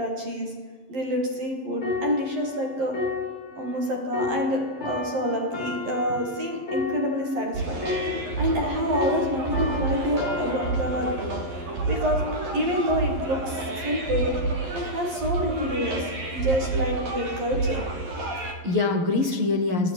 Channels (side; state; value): left; late; 11 ms